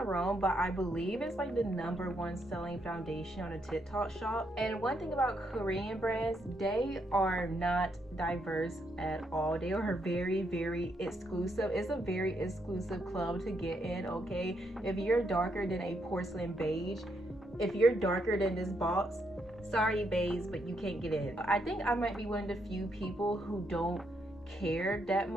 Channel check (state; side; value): normal; both; correlation 0.77